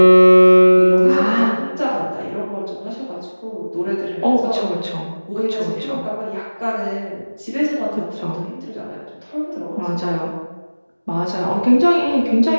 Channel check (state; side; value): inverted; both; correlation -1.00